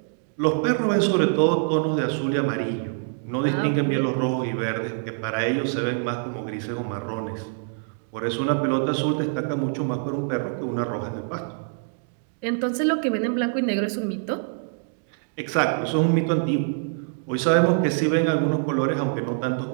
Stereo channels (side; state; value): left; silent; digital silence